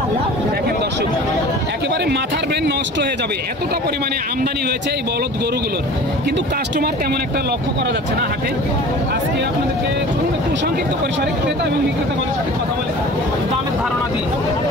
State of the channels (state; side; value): normal; both; correlation 0.41